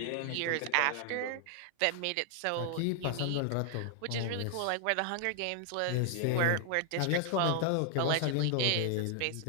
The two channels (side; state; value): both; different; correlation 0.00